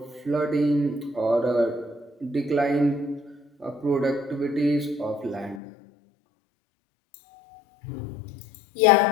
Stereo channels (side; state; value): right; drops out; at 5.6 s